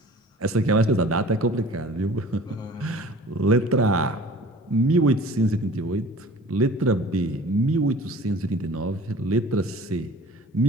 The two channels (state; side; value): normal; both; correlation 0.45